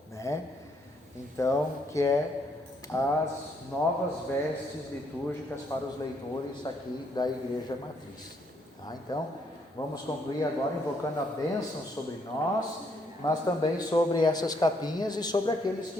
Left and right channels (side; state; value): both; normal; correlation 0.71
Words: né? Então, que é as novas vestes litúrgicas para os leitores aqui da Igreja Matriz. Tá? Então, vamos concluir agora invocando a bênção sobre nós, mas também sobre essas capinhas e sobre aqueles